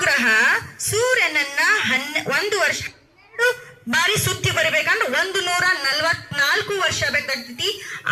ಸೂರ್ಯನನ್ನ 1 ವರ್ಷ ಬಾರಿ ಸುತ್ತಿ ಬರಬೇಕಂದ್ರೆ 144 ವರ್ಷ ಬೇಕಾಗ್ತೈತಿ.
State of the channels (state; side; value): identical; both; correlation 1.00